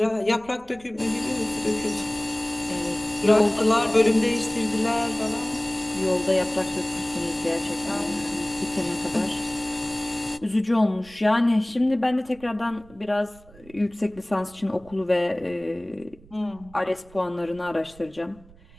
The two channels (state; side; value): noise; right; rumble, 24 dB below the sound